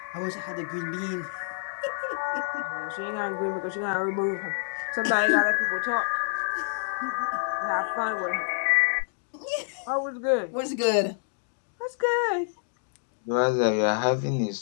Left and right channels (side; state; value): right; silent; digital silence